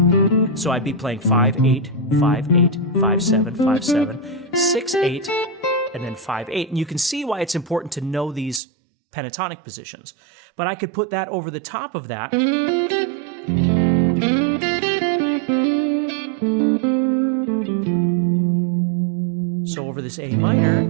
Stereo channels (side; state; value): left; drops out; at 8.6 s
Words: So I'd be playing 5-8, 5-8, 5-7, 5-7, 6-8, and then 5-8. And you can see why it's important to know these pentatonic positions. But I could put that over the top of that. So over this A minor,